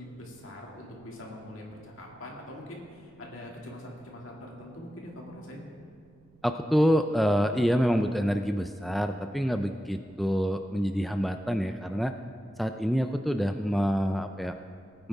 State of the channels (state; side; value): noise; right; rumble, 30 dB below the sound